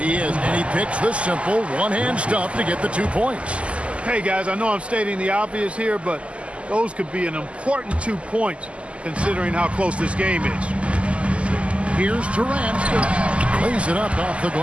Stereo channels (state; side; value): late; left; 0.058 ms